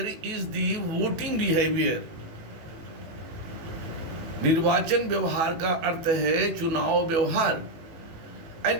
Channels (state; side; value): late; left; 18 ms